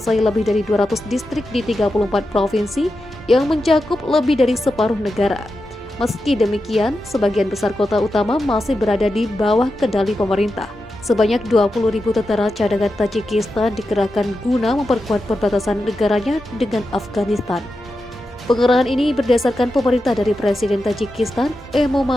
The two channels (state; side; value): normal; both; correlation 0.89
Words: lebih dari 200 distrik di 34 provinsi yang mencakup lebih dari separuh negara. Meski demikian, sebagian besar kota utama masih berada di bawah kendali pemerintah. Sebanyak 20.000 tentara cadangan Tajikistan dikerahkan guna memperkuat perbatasan negaranya dengan Afghanistan. Pengerahan ini berdasarkan pemerintah dari Presiden Tajikistan,